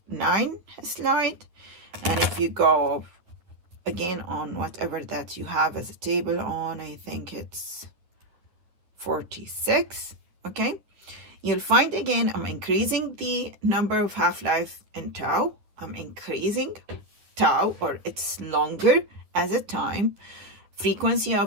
slide, and if you go again on whatever that you have as a table on, I think it's 46. Okay, you'll find again I'm increasing the number of half-life in tau. I'm increasing tau, or it's longer as a time. Frequency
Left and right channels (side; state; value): left; late; 9.9 ms